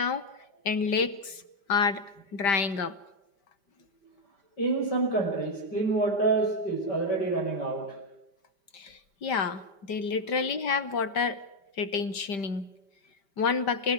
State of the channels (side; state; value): right; late; 5.1 ms